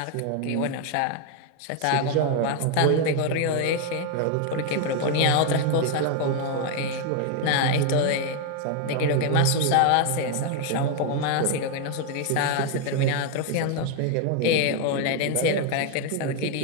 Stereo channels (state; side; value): different; both; correlation 0.01